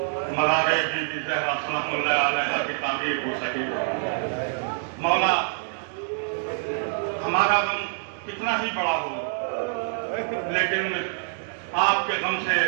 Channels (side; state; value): left; silent; digital silence